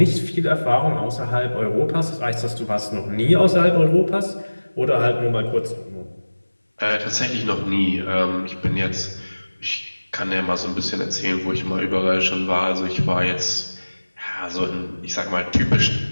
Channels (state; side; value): inverted; both; correlation -1.00